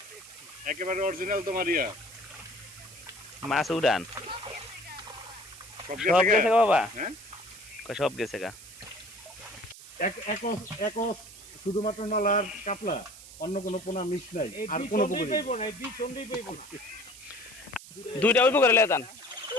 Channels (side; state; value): right; noise; hiss, 17 dB below the sound